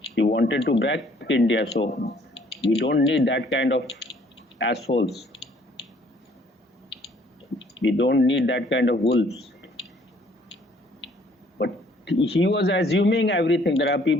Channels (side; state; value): both; normal; correlation 0.61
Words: He wanted to break India, so we don't need that kind of assholes. We don't need that kind of wolves. But he was assuming everything. There are